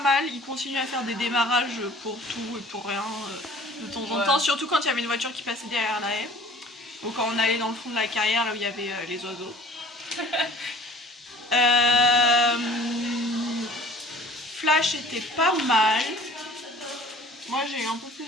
il continue à faire des démarrages pour tout et pour rien de temps en temps, surtout quand il y avait une voiture qui passait derrière la haie. Ou quand on allait dans le fond de la carrière là où il y avait les oiseaux. Flash était pas mal. Moi j'ai eu un peu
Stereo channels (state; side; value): normal; both; correlation 0.49